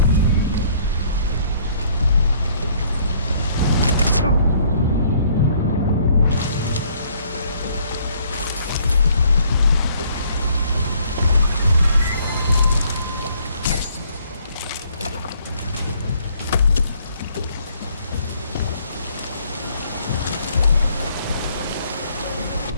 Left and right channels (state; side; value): inverted; both; correlation -0.62